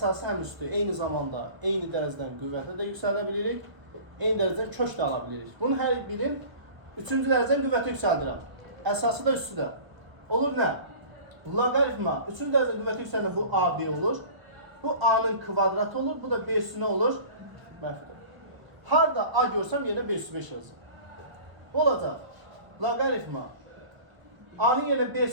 həm üstü eyni zamanda eyni dərəcədən qüvvətə də yüksəldə bilirik, eyni dərəcədən kök də ala bilirik. Bunun hər birin 3-cü dərəcədən qüvvəti yüksəldirəm. Əsası da üstü də. Olur nə? Loqaritma 3-cü dərəcədən qüvvəti yüksəldən bu AB olur. Bu A-nın kvadratı olur, bu da B üssü nə olur? Mənfidir. Harda A görsəm yerine B üssü 5 yazsın. Bu olacaq. Loqaritma A-nın yerine B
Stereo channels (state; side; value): late; left; 1.2 ms